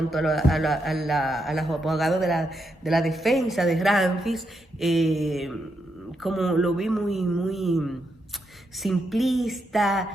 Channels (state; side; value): normal; both; correlation 0.82